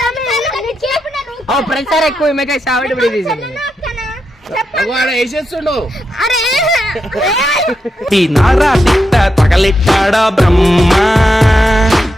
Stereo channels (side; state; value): both; normal; correlation 0.85